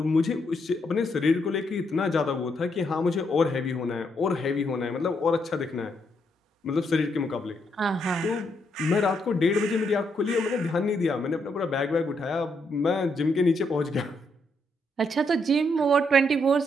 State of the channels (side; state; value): both; normal; correlation 0.77